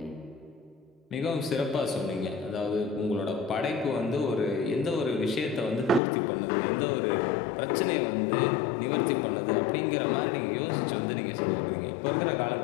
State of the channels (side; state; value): right; drops out; at 6.0 s